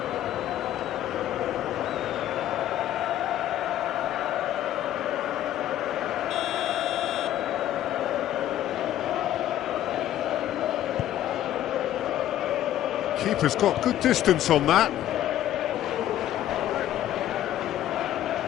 Keeper's got good distance on that.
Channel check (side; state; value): right; quieter; 12.4 dB